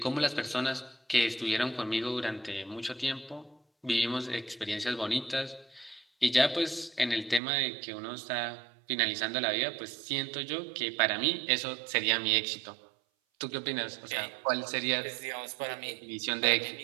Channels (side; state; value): left; drops out; at 7.4 s